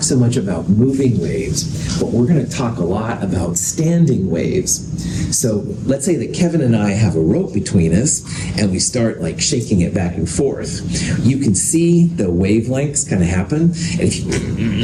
so much about moving waves, but we're going to talk a lot about standing waves. So let's say that Kevin and I have a rope between us, and we start like shaking it back and forth. You can see the wavelengths kind of happen, and if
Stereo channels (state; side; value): identical; both; correlation 1.00